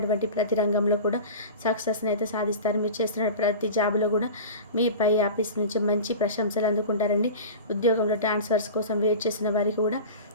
ప్రతి రంగంలో కూడా సక్సెస్ని అయితే సాధిస్తారు. మీరు చేస్తున్న ప్రతి జాబ్లో కూడా మీ పై ఆఫీస్ నుంచి మంచి ప్రశంసలు అందుకుంటారండి. ఉద్యోగంలో ట్రాన్స్ఫర్స్ కోసం వెయిట్ చేసిన వారికి కూడా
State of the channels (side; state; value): both; inverted; correlation -0.33